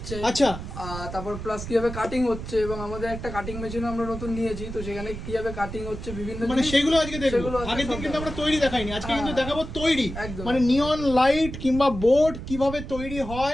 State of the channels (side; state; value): right; noise; rumble, 9 dB below the sound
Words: আচ্ছা, তারপর প্লাস কিভাবে কাটিং হচ্ছে, এবং আমাদের একটা কাটিং মেশিন আমরা নতুন নিয়েছি, তো সেখানে কিভাবে কাটিং হচ্ছে বিভিন্ন মানে জিনিস, সেগুলো আজকে দেখবো। সেগুলো আজকে আগের দিন সব কিন্তু আমরা দেখাবো। তৈরি দেখাইনি, আজকে কিন্তু হ্যাঁ, দেখাবো তৈরি। একদম। মানে নিয়ন লাইট কিংবা বোর্ড কিভাবে তৈরি